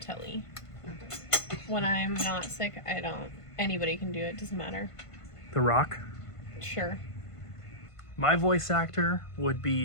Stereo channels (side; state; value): right; late; 1.5 ms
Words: When I'm not sick, I don't. Anybody can do it. Doesn't matter. The Rock? Sure. My voice actor would